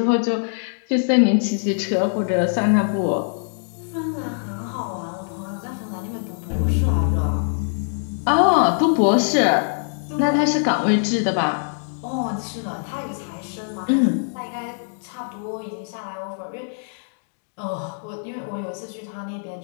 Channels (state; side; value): silent; right; digital silence